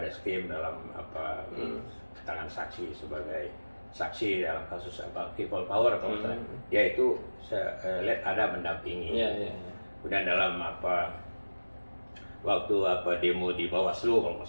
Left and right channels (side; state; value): both; inverted; correlation -1.00